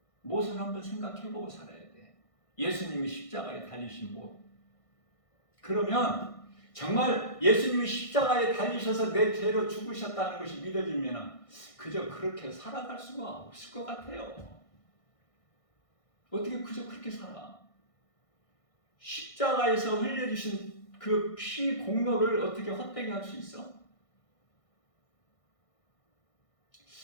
못을 한번 생각해보고 살아야 돼. 예수님이 십자가에 달리신 못. 그러면 정말 예수님이 십자가에 달리셔서 내 죄로 죽으셨다는 것이 믿어지면 그저 그렇게 살아갈 수가 없을 것 같아요. 어떻게 그저 그렇게 살아? 십자가에서 흘려주신 그 피 공로를 어떻게 헛되게 할 수 있어?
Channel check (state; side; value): late; right; 1.6 ms